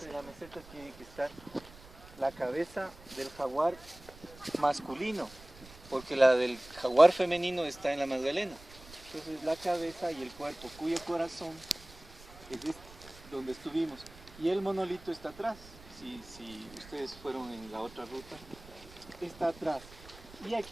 de la meseta tiene que estar la cabeza del jaguar masculino, porque la del jaguar femenino está en la Magdalena. Entonces la cabeza y el cuerpo, cuyo corazón es este, donde estuvimos, y el monolito está atrás. Si ustedes fueron en la otra ruta, está atrás. Y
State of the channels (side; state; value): right; noise; rumble, 20 dB below the sound